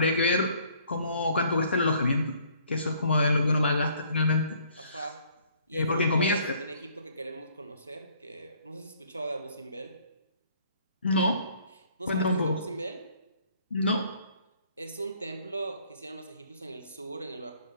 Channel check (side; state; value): both; inverted; correlation -0.60